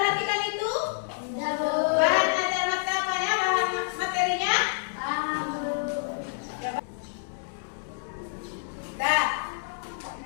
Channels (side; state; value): right; silent; digital silence